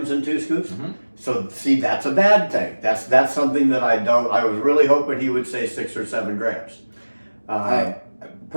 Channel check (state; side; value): inverted; both; correlation -1.00